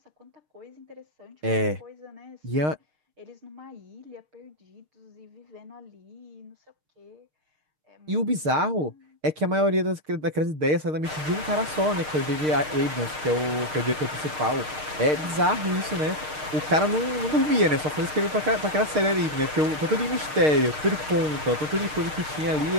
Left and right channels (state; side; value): late; left; 6.5 ms